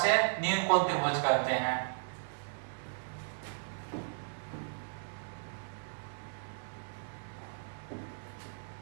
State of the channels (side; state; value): left; silent; 54 dB below the other